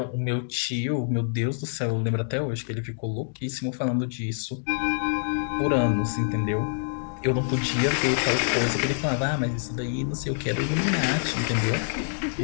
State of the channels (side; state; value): right; silent; digital silence